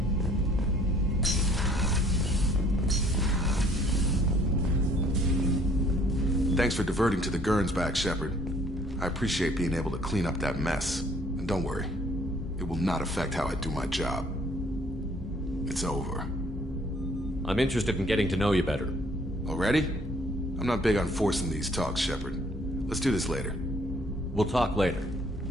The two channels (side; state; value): both; normal; correlation 0.60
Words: Thanks for diverting to the Gernsback, Shepard. I appreciate being able to clean up that mess. And don't worry, it will not affect how I do my job. It's over. I'm interested in getting to know you better. Already? I'm not big on forcing these talks, Shepard. Let's do this later. We'll talk later.